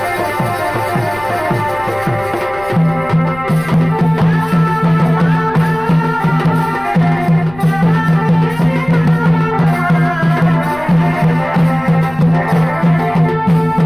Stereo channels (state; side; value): noise; left; rumble, 19 dB below the sound